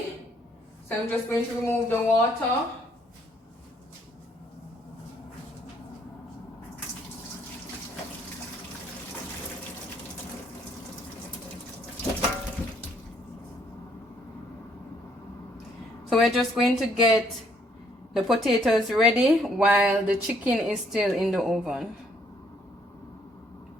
So I'm just going to remove the water. So we're just going to get the potatoes ready while the chicken is still in the oven.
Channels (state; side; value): normal; both; correlation 0.67